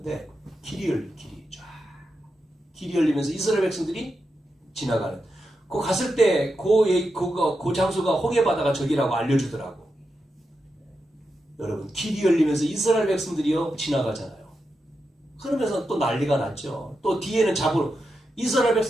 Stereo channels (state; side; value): normal; both; correlation 0.87